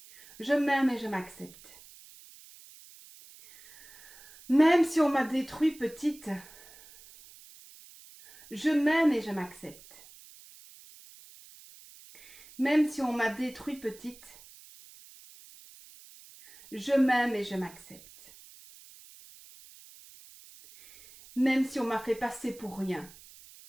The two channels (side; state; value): right; noise; hiss, 21 dB below the sound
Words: je m'aime et je m'accepte. Même si on m'a détruit petite, je m'aime et je m'accepte. Même si on m'a détruit petite, je m'aime et je m'accepte. Même si on m'a fait passer pour rien,